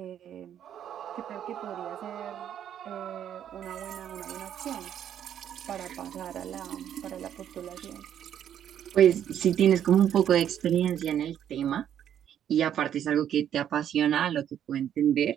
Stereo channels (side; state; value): left; quieter; 9.9 dB